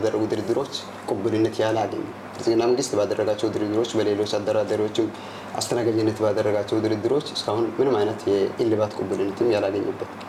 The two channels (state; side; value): identical; both; correlation 1.00